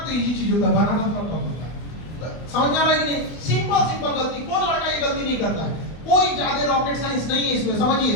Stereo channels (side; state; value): right; late; 24 ms